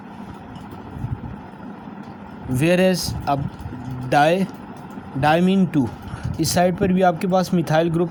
वेयर एज अब डायमीन 2, इस साइड पर भी आपके पास मिथाइल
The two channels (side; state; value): both; identical; correlation 1.00